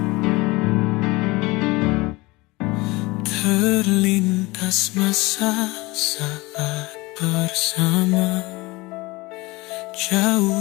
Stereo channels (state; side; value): quieter; right; 22.6 dB